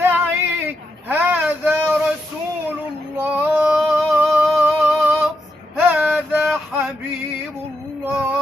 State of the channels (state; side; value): normal; both; correlation 0.83